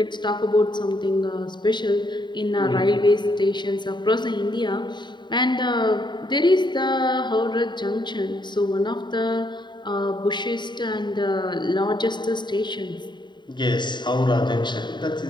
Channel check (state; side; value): late; right; 0.22 ms